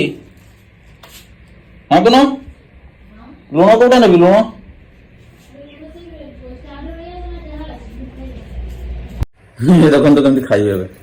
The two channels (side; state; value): both; identical; correlation 1.00